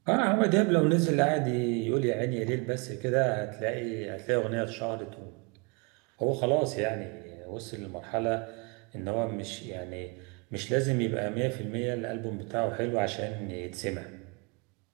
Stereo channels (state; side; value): quieter; left; 31.0 dB